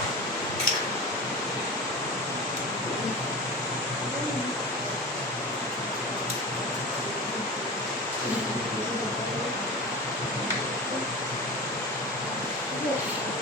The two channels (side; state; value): both; normal; correlation 0.29